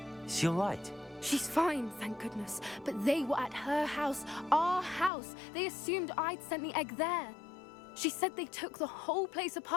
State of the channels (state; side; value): drops out; right; at 5.1 s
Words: Is she all right? She's fine, thank goodness. But they were at her house, our house. They assumed I'd sent the egg there. She said they took the whole place